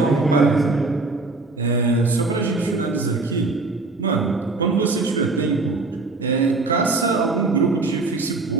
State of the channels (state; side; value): quieter; left; 3.6 dB